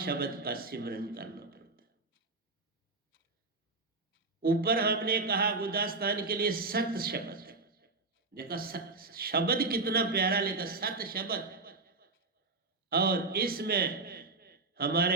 का सिमरन करना पड़ता है। ऊपर हमने कहा गुदास्तान के लिए सत शब्द, देखा शब्द कितना प्यारा लिखा, सत शब्द। और इसमें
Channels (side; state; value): left; quieter; 3.7 dB